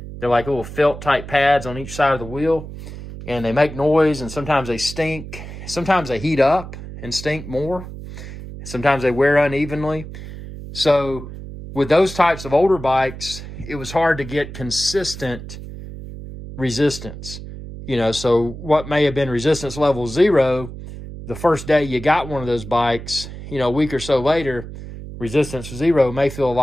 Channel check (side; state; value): right; noise; hum, 12 dB below the sound